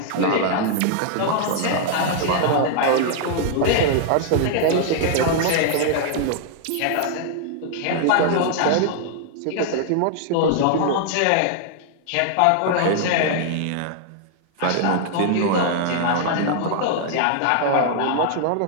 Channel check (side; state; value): both; different; correlation -0.01